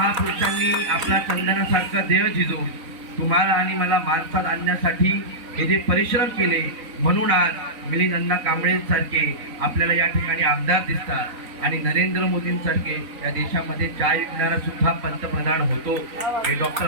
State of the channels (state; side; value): late; left; 3.9 ms